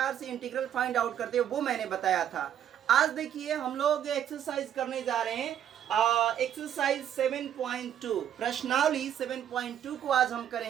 से इंटीग्रल फाइंड आउट करते हैं वो मैंने बताया था। आज देखिए हम लोग एक्सरसाइज करने जा रहे हैं, एक्सरसाइज 7.2 प्रश्नावली 7.2 को आज हम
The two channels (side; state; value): left; quieter; 10.1 dB